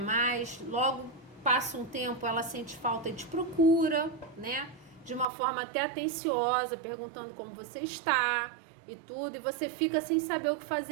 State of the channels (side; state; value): left; drops out; at 5.2 s